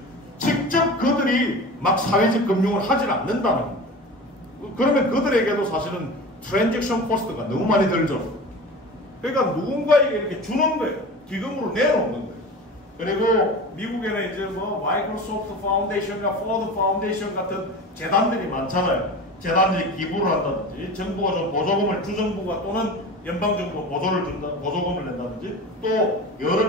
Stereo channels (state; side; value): normal; both; correlation 0.33